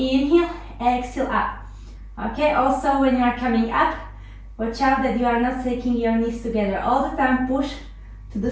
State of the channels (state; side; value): identical; both; correlation 1.00